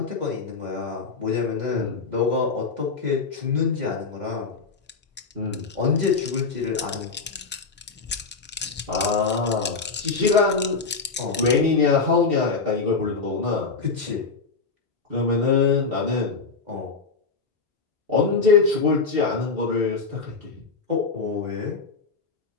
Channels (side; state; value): right; quieter; 4.6 dB